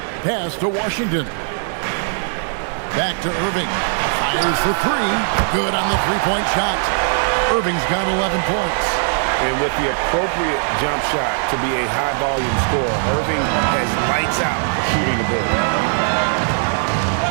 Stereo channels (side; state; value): left; silent; digital silence